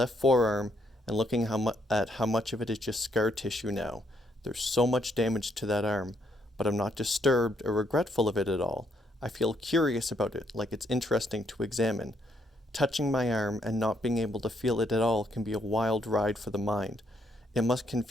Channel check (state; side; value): normal; both; correlation 0.73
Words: forearm and looking at how much of it is just scar tissue now. There's so much damage to that arm, but I'm not disturbed or regretful of it at all. I feel curious about it, like it's interesting to examine. Touching my arm and not being able to feel it at all can be a wild ride for the mind. It must